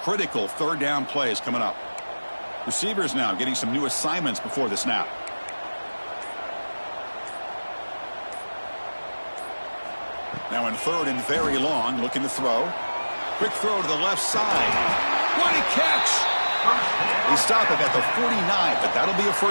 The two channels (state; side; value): inverted; both; correlation -1.00